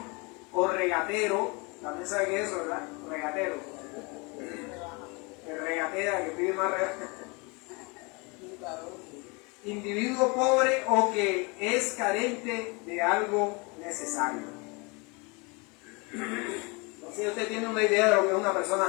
o regatero. También sabe que es eso, ¿verdad? Regatero. Que regatea, que pide más regateo. individuo pobre o que es carente de algo necesario. Entonces usted tiene una idea de lo que es una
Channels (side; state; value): right; quieter; 29.0 dB